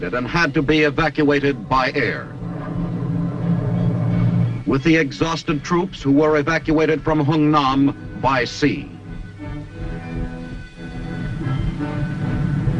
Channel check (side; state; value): both; identical; correlation 1.00